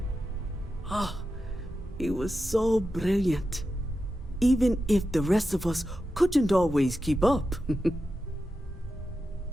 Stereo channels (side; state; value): both; normal; correlation 0.90